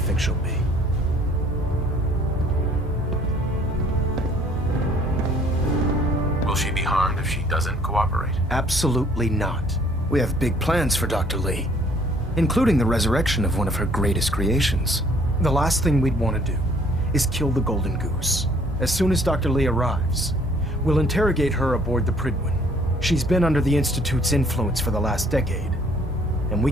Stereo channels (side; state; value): both; normal; correlation 0.59